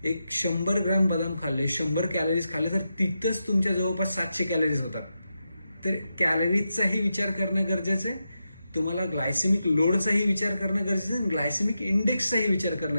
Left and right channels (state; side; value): inverted; both; correlation -0.88